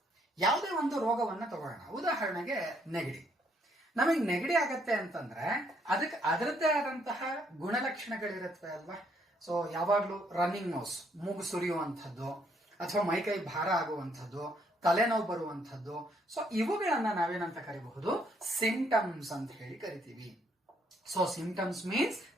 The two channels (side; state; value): both; normal; correlation 0.70